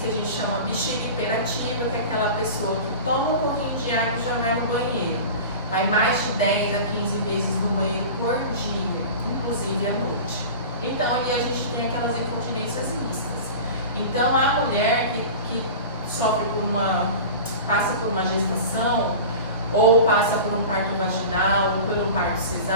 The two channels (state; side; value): inverted; both; correlation -0.34